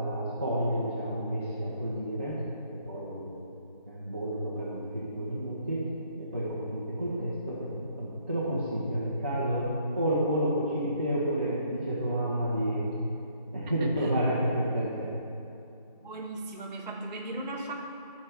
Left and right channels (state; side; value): inverted; both; correlation -0.67